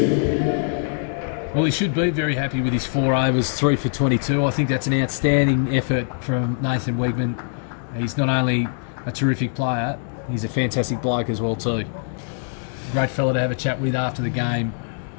Well, he should be very happy with his 4 overs, 3 for 22. I think that's an outstanding effort from Nathan Wegman. He's not only a terrific player, he's a fantastic bloke as well too. Great fella to have a chat with after the game.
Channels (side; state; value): right; silent; digital silence